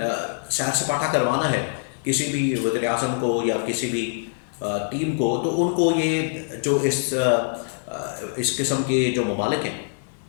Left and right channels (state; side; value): silent; right; digital silence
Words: सैर सपाटा करवाना है किसी भी वज़ीर आज़म को या किसी भी टीम को, तो उनको ये जो इस किस्म के जो ममालिक हैं,